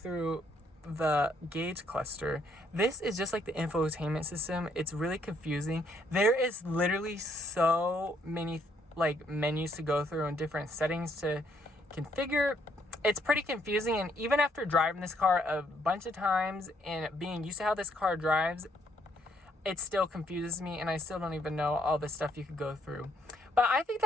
the gauge cluster. This is just like the infotainment system. It's really confusing. There is literally so many like menus to go through and different settings to configure. It's pretty confusing, and even after driving this car a bunch of times and being used to how this car drives, it still confuses me, and I still don't even know all the stuff you could go through. But I think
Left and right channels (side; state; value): both; normal; correlation 0.70